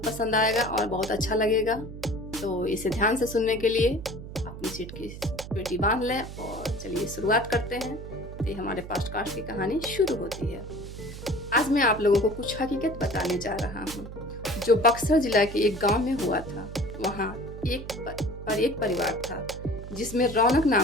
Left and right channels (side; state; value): right; noise; hum, 11 dB below the sound